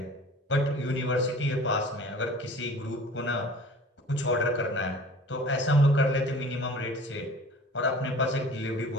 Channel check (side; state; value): both; normal; correlation 0.44